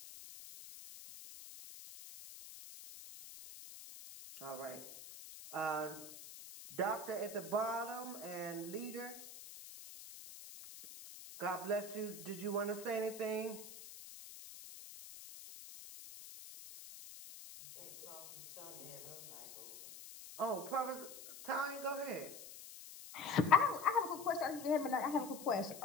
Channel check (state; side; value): noise; left; hiss, 14 dB below the sound